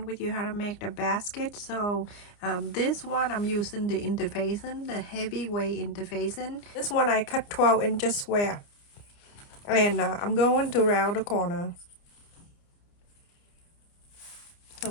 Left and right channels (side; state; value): right; late; 29 ms